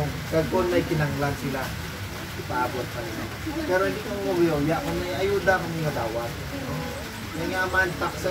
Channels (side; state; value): both; identical; correlation 1.00